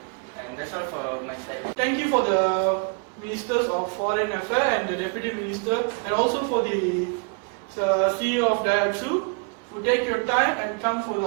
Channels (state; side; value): quieter; left; 36.3 dB